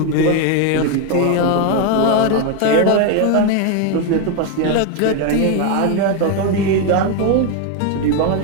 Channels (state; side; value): different; both; correlation 0.01